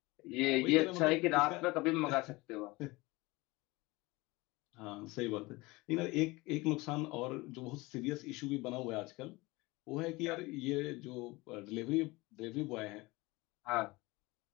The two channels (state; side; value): quieter; right; 22.5 dB